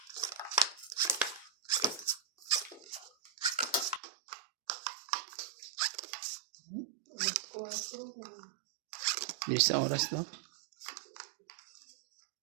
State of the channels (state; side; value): drops out; left; at 4.0 s